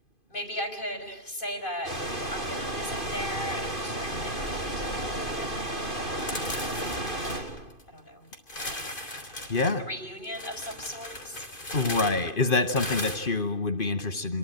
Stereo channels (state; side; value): late; right; 2.5 ms